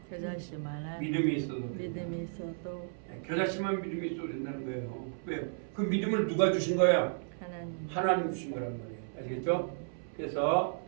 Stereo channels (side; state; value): left; silent; 55 dB below the other